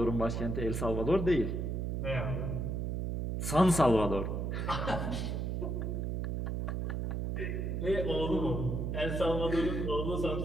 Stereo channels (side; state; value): right; noise; hum, 1 dB below the sound